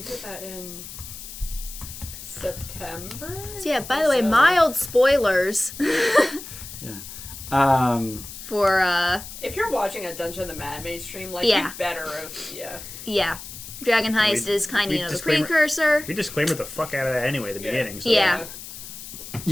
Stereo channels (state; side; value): noise; left; hiss, 12 dB below the sound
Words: did that in September? So yeah, by the way, mild spoilers Um, for If you're watching a Dungeon the Mad Mage stream, like, Yeah. you better have, yeah. Dragon Heist is kind of, we the disclaimer- precursor. We disclaimed the fuck out of that anyway at the beginning. So. Yeah.